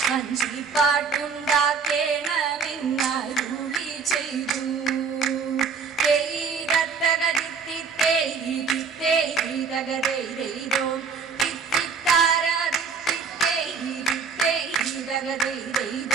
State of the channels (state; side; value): quieter; left; 5.6 dB